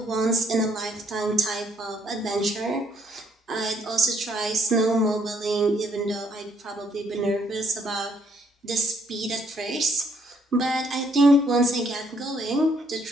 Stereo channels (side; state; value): both; normal; correlation 0.69